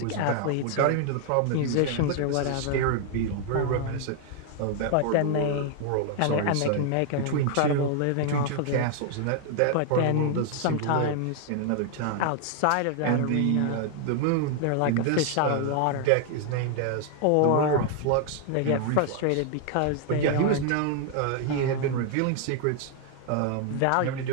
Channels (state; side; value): different; both; correlation 0.00